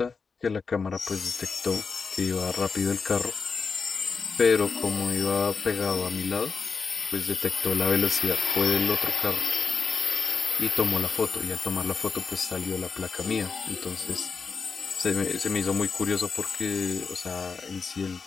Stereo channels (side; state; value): right; quieter; 5.0 dB